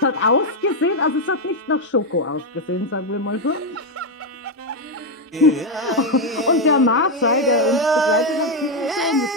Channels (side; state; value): both; normal; correlation 0.04